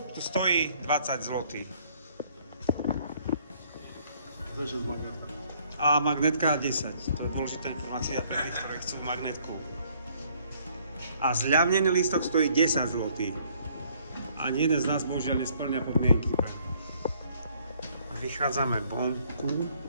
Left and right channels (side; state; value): both; inverted; correlation -0.63